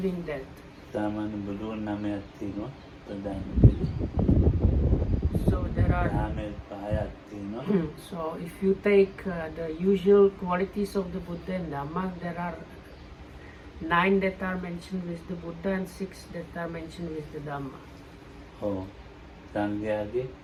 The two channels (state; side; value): identical; both; correlation 1.00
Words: that. So there are. So if you take the usual qualities of the Buddha and Dhamma, there are 9 that are mentioned with the Buddha and 6 that are mentioned with the Dhamma. Oh, Sangyadi,